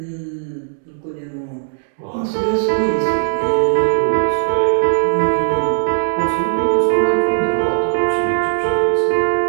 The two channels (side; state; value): left; silent; 68 dB below the other